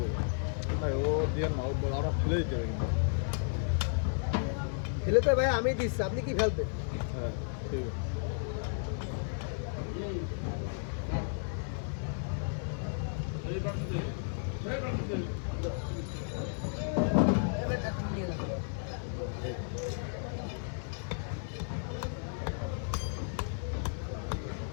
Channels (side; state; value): right; silent; digital silence